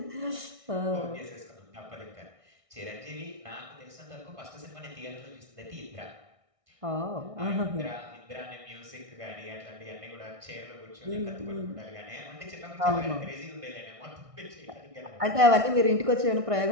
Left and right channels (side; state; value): left; late; 1.6 ms